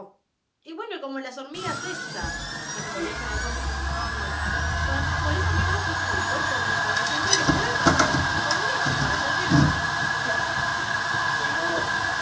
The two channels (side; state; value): both; identical; correlation 1.00